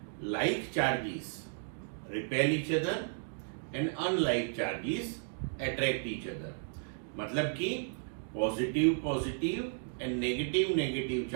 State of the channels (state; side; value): silent; left; digital silence